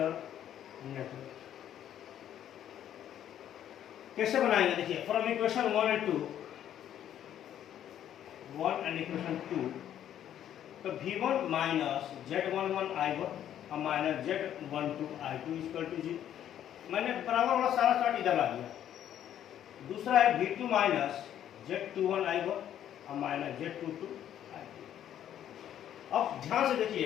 network कैसे बनाएंगे, देखिए from equation 1 and 2, 1 and equation 2, तो V1 माइनस Z11 I1 और minus Z12 I2 equal to 0। मैंने बराबर वाला सारा चार्ट इधर ला दिया। दूसरा है V2 माइनस Z21 I1 और माइनस Z22 I2। अब ध्यान से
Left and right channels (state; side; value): quieter; right; 10.7 dB